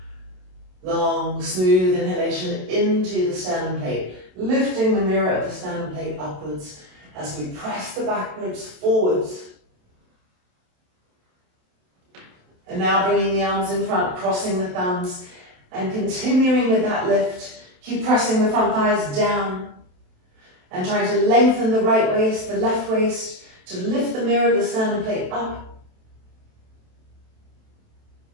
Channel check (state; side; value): late; left; 27 ms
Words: Long, smooth inhalation into the sternum plate, lifting the mirror of the sternum plate upwards as we press the back ribs forwards. And now bringing the arms in front, crossing the thumbs, and continuing with that lift. Keep pressing the front thighs down and trying to lengthen the right waist, the left waist, to lift the mirror of the sternum plate up.